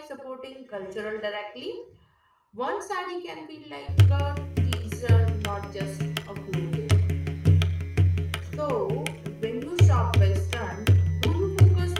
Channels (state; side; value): identical; both; correlation 1.00